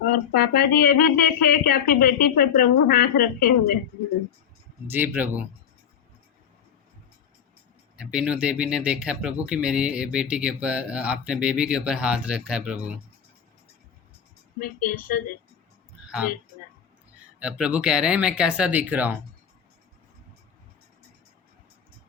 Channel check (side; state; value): right; quieter; 8.0 dB